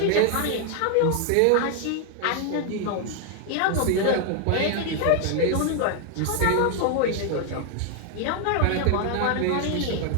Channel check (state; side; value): different; both; correlation 0.00